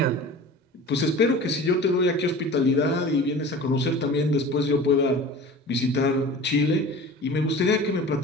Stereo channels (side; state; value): both; normal; correlation 0.38